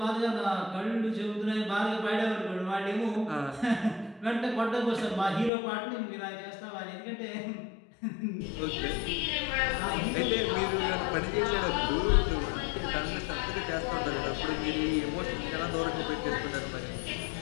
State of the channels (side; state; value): right; drops out; at 5.5 s